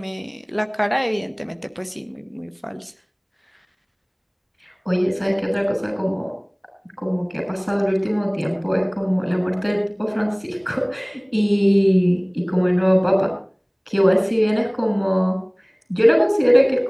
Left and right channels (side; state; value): both; identical; correlation 1.00